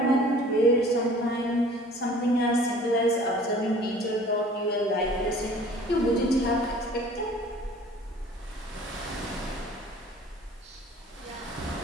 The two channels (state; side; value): normal; both; correlation 0.49